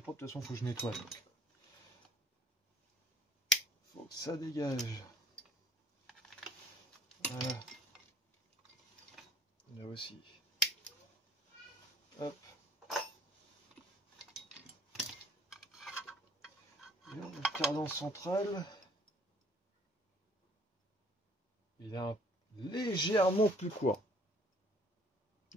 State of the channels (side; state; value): both; normal; correlation 0.57